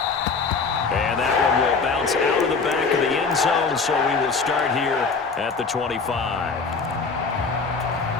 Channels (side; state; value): right; quieter; 4.7 dB